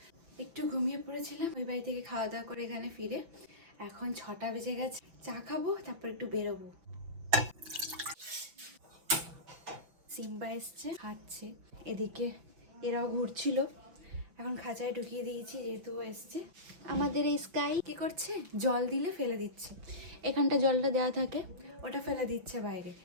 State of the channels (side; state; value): left; late; 5.9 ms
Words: একটু ঘুমিয়ে পড়েছিলাম ওই বাড়ি থেকে খাওয়া দাওয়া করে এখানে ফিরে। এখন 6টা বেজে গেছে, চা খাবো, তারপর একটু বেরোবো। সিম্বা এসছে, খাচ্ছে। এদিকে এরাও ঘুরছিল, এখন খাঁচায় ঢুকিয়ে দিয়েছি যেহেতু এসছে। আমাদের এই স্কাই কি করছে, জল দিলে ফেলে দিচ্ছে। এখানটা জলটা দেওয়া থাকে, ওটা ফেলে দিচ্ছে বাইরে।